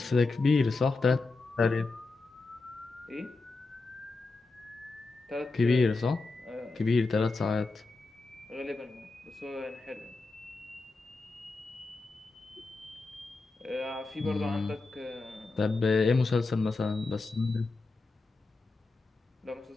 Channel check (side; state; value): right; quieter; 3.7 dB